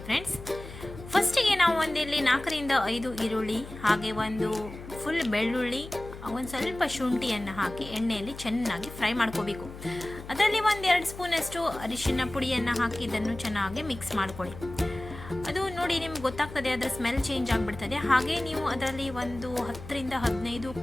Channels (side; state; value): left; noise; hum, 13 dB below the sound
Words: ಫ್ರೆಂಡ್ಸ್. ಫಸ್ಟಿಗೆ ನಾವು ಒಂದಿಲ್ಲಿ 4ರಿಂದ 5 ಈರುಳ್ಳಿ, ಹಾಗೆ ಒಂದು ಫುಲ್ ಬೆಳ್ಳುಳ್ಳಿ, ಒಂದು ಸ್ವಲ್ಪ ಶುಂಠಿಯನ್ನು ಹಾಕಿ ಎಣ್ಣೆಯಲ್ಲಿ ಚೆನ್ನಾಗಿ ಫ್ರೈ ಮಾಡ್ಕೋಬೇಕು. ಅದರಲ್ಲಿ 1-2 ಸ್ಪೂನಷ್ಟು ಅರಿಶಿನ ಪುಡಿಯನ್ನು ಹಾಕಿ ಇದನ್ನು ಚೆನ್ನಾಗಿ ಮಿಕ್ಸ್ ಮಾಡ್ಕೊಳ್ಳಿ. ಅದು ನೋಡಿ ನಿಮ್ಗೆ ಗೊತ್ತಾಗ್ತದೆ, ಅದರ ಸ್ಮೆಲ್ ಚೇಂಜ್ ಆಗಿಬಿಡ್ತದೆ. ಹಾಗೆ ನೀವು ಅದರಲ್ಲಿ ಒಂದು 10ರಿಂದ 15